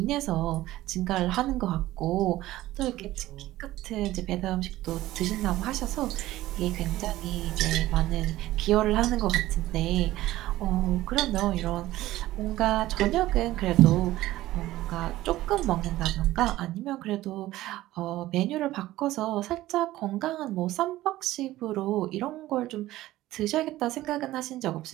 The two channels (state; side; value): quieter; left; 16.0 dB